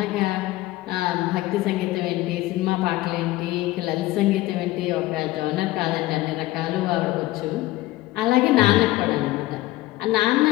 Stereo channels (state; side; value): quieter; right; 17.6 dB